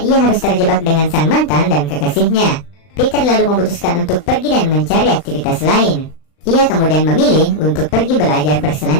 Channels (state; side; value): late; right; 39 ms